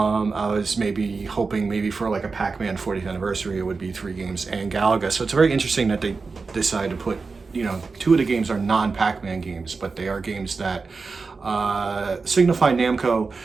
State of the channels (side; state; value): left; quieter; 4.4 dB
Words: was maybe hoping maybe for like a Pac-Man 40th anniversary, it would be 3 games and Galaga. So it's very interesting that they decided to put, you know, 2 of the games are non-Pac-Man games, but they are games that signify Namco